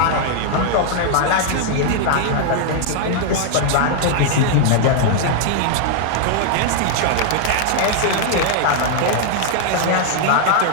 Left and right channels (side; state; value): both; different; correlation 0.00